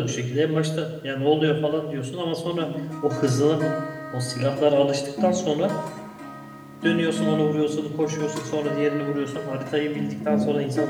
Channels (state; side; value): identical; both; correlation 1.00